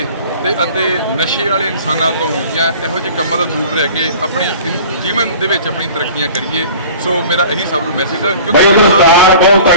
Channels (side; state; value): both; inverted; correlation -0.43